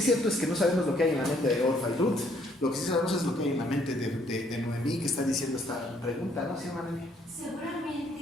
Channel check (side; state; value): both; normal; correlation 0.66